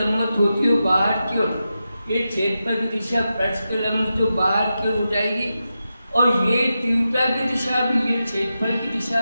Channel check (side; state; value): both; inverted; correlation -0.90